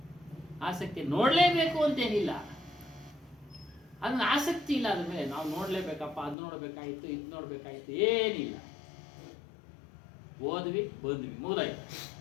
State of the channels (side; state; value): right; drops out; at 6.4 s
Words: ಆಸಕ್ತಿ ನೋಡಲೇಬೇಕು ಅಂತೇನಿಲ್ಲ, ಅದನ್ನ ಆಸಕ್ತಿ ಇಲ್ಲ. ಅದ್ರ ಮೇಲೆ ನಾವು ನೋಡಲೇಬೇಕಪ್ಪ, ಅದು ನೋಡಬೇಕಾಯ್ತು, ಇದು ನೋಡಬೇಕಾಯ್ತು, ಏನಿಲ್ಲ. ಓದ್ವಿ, ಬಂದ್ವಿ, ಮುಗಿದಾಯ್ತು.